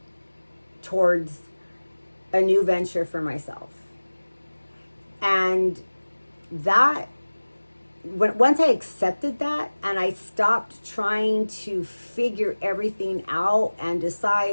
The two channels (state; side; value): inverted; both; correlation -1.00